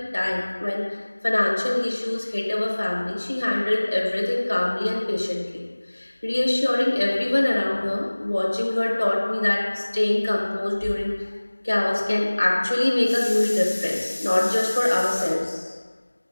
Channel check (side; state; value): both; inverted; correlation -1.00